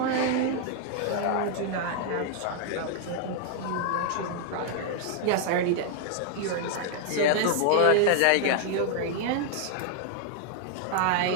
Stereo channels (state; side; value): different; both; correlation 0.00